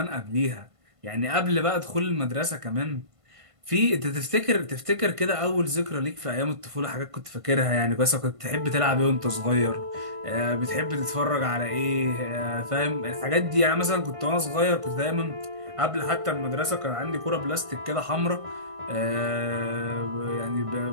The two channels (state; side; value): late; left; 1.5 ms